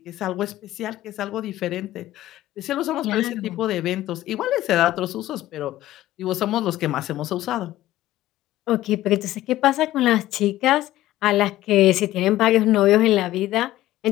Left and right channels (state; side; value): quieter; right; 15.0 dB